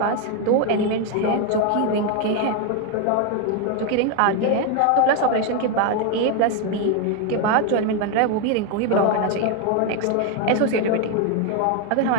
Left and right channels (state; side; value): different; both; correlation 0.01